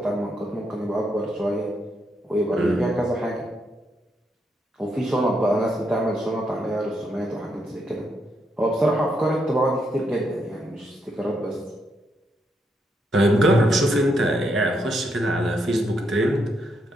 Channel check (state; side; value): normal; both; correlation 0.78